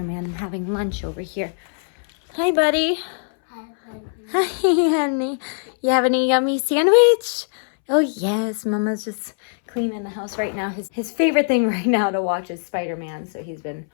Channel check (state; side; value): silent; right; 64 dB below the other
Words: and having lunch over here. Hi, buddy. Hi, honey. Hi, honey. You having a yummy sandwich? Oh, yes. Mama's just cleaning the house right now. His favorite thing right now to watch is Spider-Man, so he's been